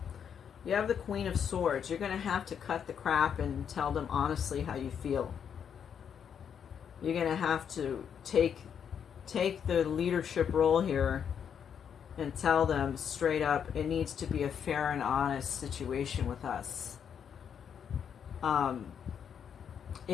You have the Queen of Swords. You're going to have to cut the crap and tell them honestly how you feel. You're going to have to take the leadership role here and tell them straight up, it needs to be a fair and honest situation with us.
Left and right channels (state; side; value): quieter; right; 7.9 dB